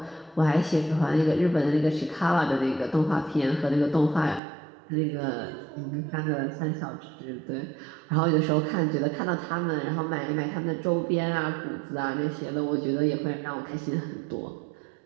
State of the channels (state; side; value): drops out; left; at 4.4 s